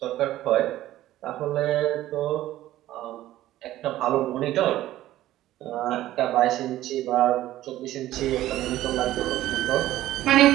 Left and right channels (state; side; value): quieter; left; 14.4 dB